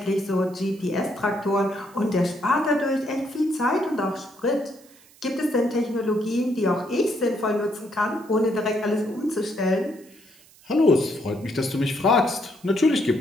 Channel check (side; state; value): right; noise; hiss, 26 dB below the sound